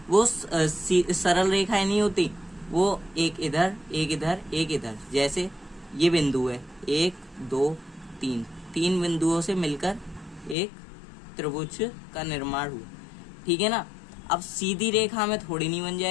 वो सरल रेखाएं नहीं होती। वो एक इधर एक इधर एक इधर, जैसे ये बिंदु है 1 2 3, 3 बिंदुओं से मिलकर एक त्रिभुज का निर्माण हुआ। ठीक है ना, अब सीधी रेखा में थोड़ी नहीं बन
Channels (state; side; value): drops out; right; at 10.6 s